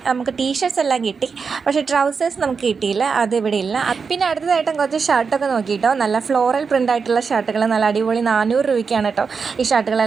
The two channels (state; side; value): quieter; left; 5.4 dB